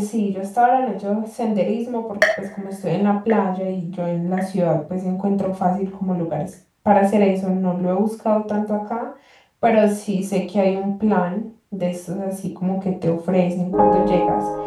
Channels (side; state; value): both; identical; correlation 1.00